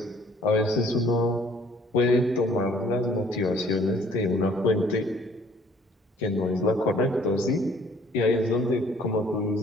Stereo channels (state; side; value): normal; both; correlation 0.58